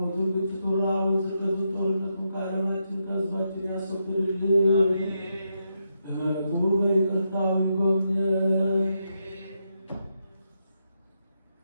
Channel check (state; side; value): inverted; both; correlation -0.83